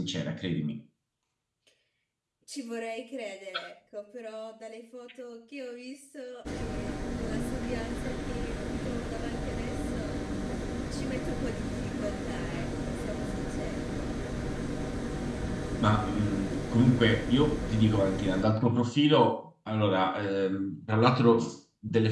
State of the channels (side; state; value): both; identical; correlation 1.00